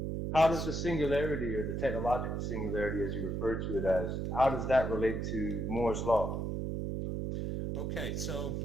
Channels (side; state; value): right; noise; hum, 2 dB below the sound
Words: how does Yes. the singularity or the technological singularity, as you refer to it as, how does that relate to Moore's law? Okay, so